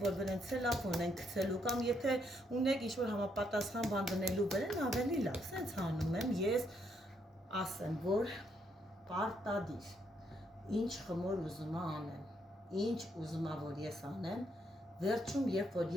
որ վրեն ցելոֆան ենք գցելու կամ եթե ունեք ինչ-որ համապատասխան բան դնելու վրան, ավելի լավ, սենց հանում եմ, ես ասեմ, որ պարտադիր, ինչ խմոր ուզում անեմ, ինչ ուզում որ ես անեմ, վերջում, երբ որ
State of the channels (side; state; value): both; normal; correlation 0.75